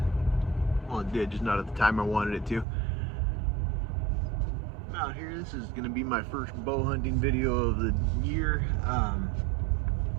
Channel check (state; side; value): drops out; left; at 2.7 s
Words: well, it did, just not at the time I wanted it to. I'm out here. This is going to be my first bow hunting video of the year.